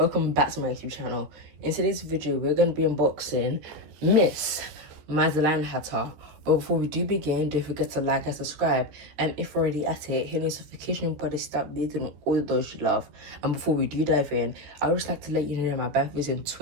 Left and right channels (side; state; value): left; late; 14 ms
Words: back to my YouTube channel. In today's video, we're going to be unboxing Miss Madeline Hatter. But before we do begin, don't forget to like and subscribe. And if you're already at it, hit notification button, start beating all those you love. And before we do dive in, I would just like to let you know my birthday is in